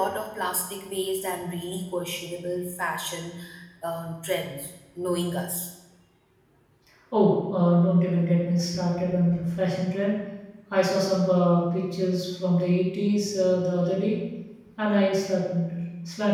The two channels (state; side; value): identical; both; correlation 1.00